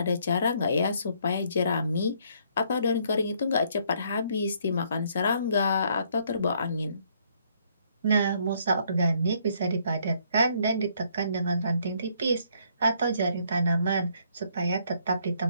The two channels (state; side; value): inverted; both; correlation -0.68